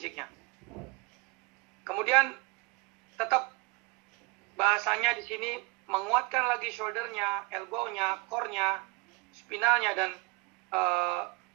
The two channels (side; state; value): left; quieter; 27.1 dB